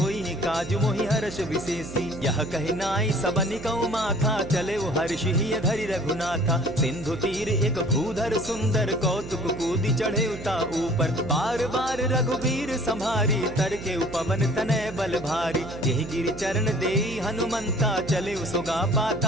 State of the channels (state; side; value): noise; right; hum, 12 dB below the sound